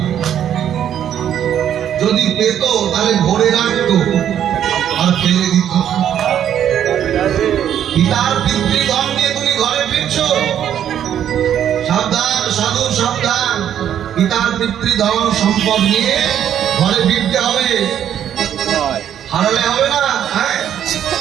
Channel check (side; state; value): left; quieter; 10.0 dB